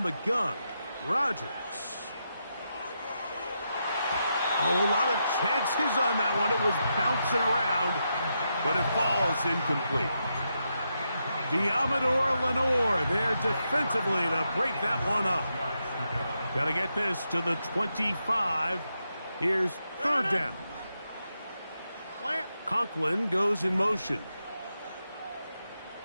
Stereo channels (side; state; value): both; inverted; correlation -0.84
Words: the gun, Rodgers. Oh, a lot of chances on that one. It was bouncing around, but it falls incomplete. Diamador Lenore there defensively to break that one up. Got to get this to the 25. Here's third down. Conklin goes in motion.